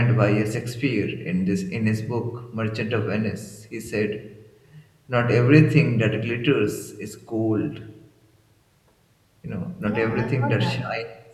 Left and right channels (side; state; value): both; identical; correlation 1.00